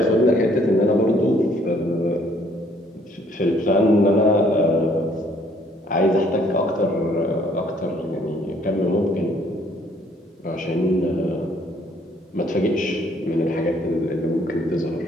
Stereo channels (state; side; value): normal; both; correlation 0.63